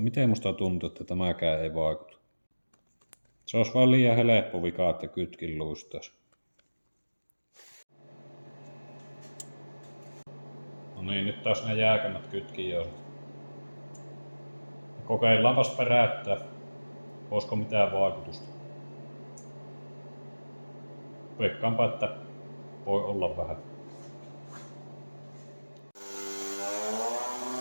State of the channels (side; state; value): both; inverted; correlation -1.00